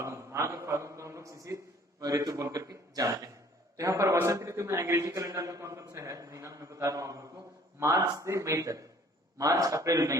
माघ और फागुन को हम लोग शिशिर ऋतु बोल करके जानते हैं। तो यहाँ पर वसंत ऋतु में अंग्रेजी कैलेंडर में कौन कौन सा है महीना मैं बता रहा हूँ आप लोग को। मार्च से मई तक, मार्च, अप्रैल, मई,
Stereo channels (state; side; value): normal; both; correlation 0.55